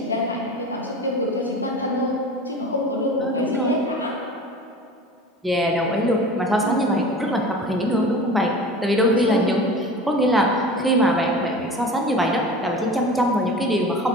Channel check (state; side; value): normal; both; correlation 0.37